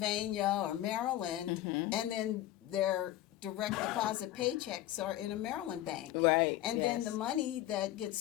or Maryland, and then their direct deposit paychecks are in a Maryland bank. Right. And then the money that gets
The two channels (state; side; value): quieter; right; 14.0 dB